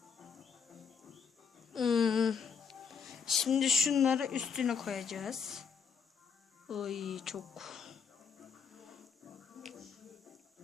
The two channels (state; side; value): quieter; right; 6.5 dB